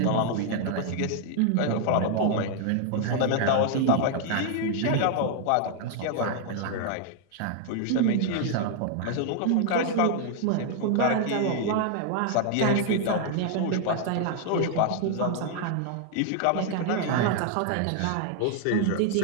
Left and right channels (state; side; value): different; both; correlation 0.00